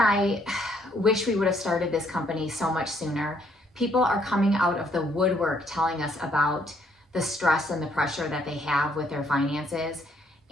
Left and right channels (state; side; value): normal; both; correlation 0.69